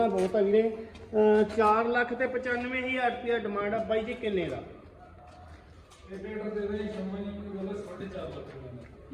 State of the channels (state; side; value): identical; both; correlation 1.00